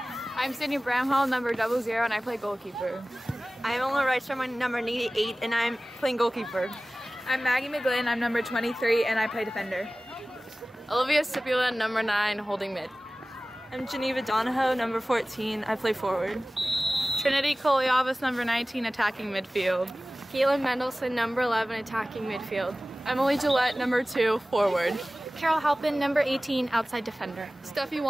Sydney Bramhall, number 00 and I play goalkeeper. I'm Ola Reichstrom, I'm number 88 and I'm playing goalkeeper. I'm Maggie McGlynn, I'm number 23 and I play defender. Olivia Stipula, number 9, holding mid. I'm Geneva Donahoe, number 14, I play forward. Trinity Koliavas, number 19, attacking midfield. Caitlin Mendelson, number 11, attacking midfield. Emily Gillette, number 2, forward. Carol Halpin, number 18, outside defender. Steffi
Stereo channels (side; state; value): both; normal; correlation 0.97